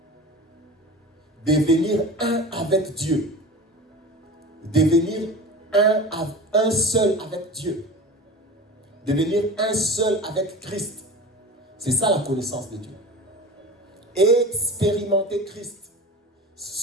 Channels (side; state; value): both; normal; correlation 0.34